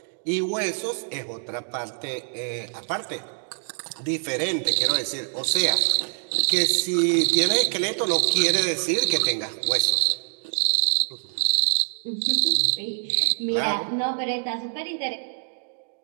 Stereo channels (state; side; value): silent; left; digital silence